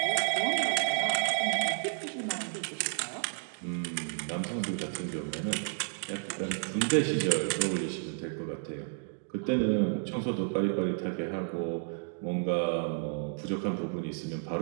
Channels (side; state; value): left; silent; digital silence